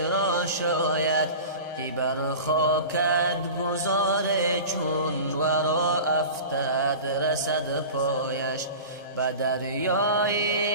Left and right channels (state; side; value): inverted; both; correlation -0.35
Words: شاید، که بر خاکت گذار چون ورا افتد رسد پایش. به